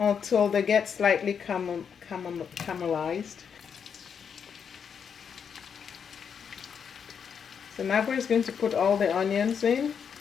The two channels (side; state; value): right; quieter; 7.1 dB